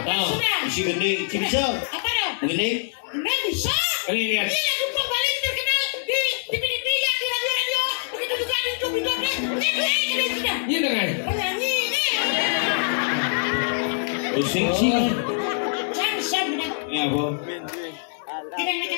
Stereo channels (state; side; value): silent; right; 57 dB below the other